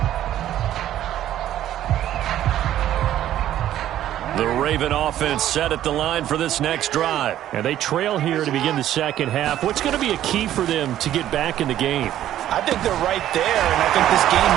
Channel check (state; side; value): quieter; left; 12.3 dB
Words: Raven offense set at the line for this next drive. And they trail here to begin the second half. What's going to be a key for them to get back in the game? I think they're right there, and I think this game